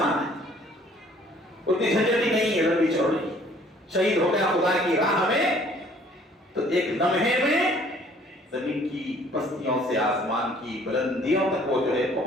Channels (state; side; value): normal; both; correlation 0.57